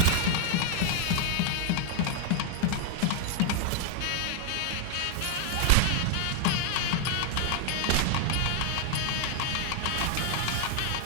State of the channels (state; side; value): different; both; correlation 0.00